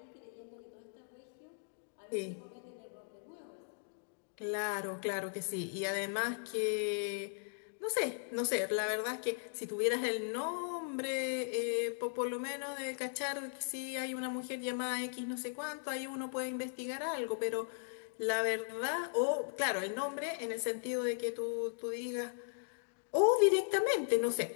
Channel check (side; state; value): right; silent; digital silence